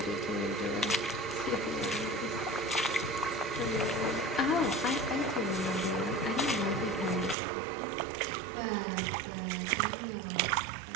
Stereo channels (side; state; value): left; drops out; at 7.4 s